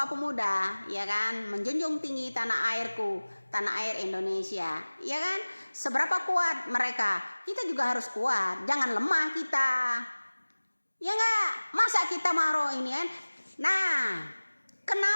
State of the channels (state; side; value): inverted; both; correlation -1.00